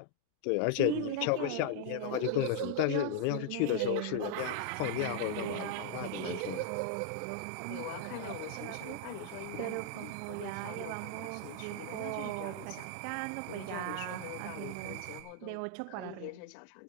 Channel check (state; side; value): different; both; correlation 0.00